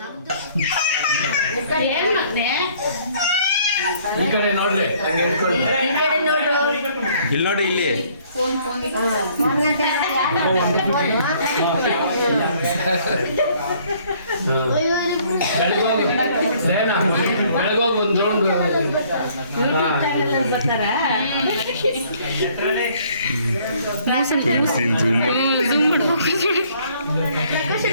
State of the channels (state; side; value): inverted; both; correlation -0.61